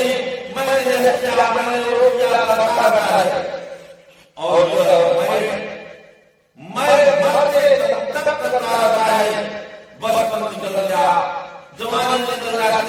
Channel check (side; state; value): both; identical; correlation 1.00